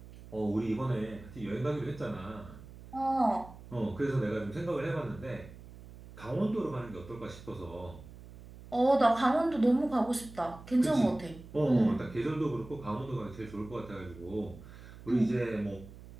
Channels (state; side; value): noise; right; hum, 17 dB below the sound